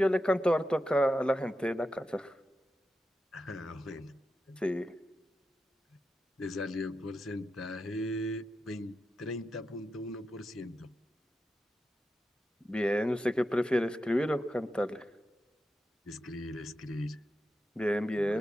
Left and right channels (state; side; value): normal; both; correlation 0.89